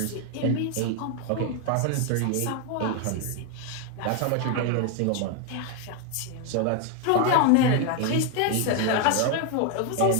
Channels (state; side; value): different; both; correlation 0.01